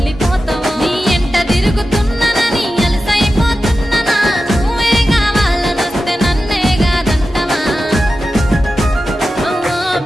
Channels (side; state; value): both; normal; correlation 0.92